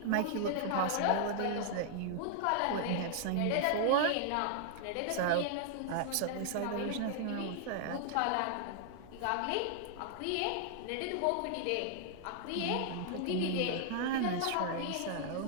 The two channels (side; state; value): both; different; correlation -0.01